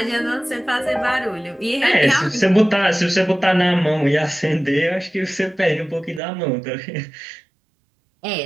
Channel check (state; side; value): drops out; left; at 6.2 s